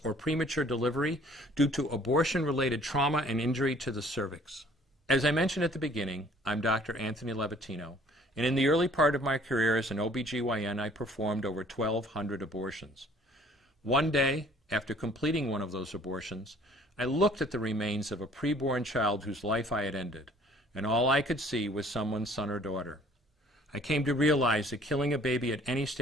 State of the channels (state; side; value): normal; both; correlation 0.56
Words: or premature delivery due to abortion-related trauma and injury to the cervix. As I mentioned at the beginning, I'm Dr. Anthony Levatino, and in the early part of my career as an OBGYN, I performed over 1,200 abortions. One day, after completing one of those abortions, I looked at the remains of a preborn child whose life I had ended, and all I could see was someone's son or daughter. I came to realize that killing a baby at any